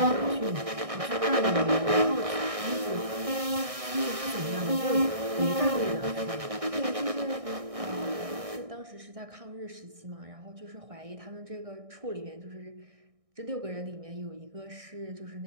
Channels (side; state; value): left; late; 1.6 ms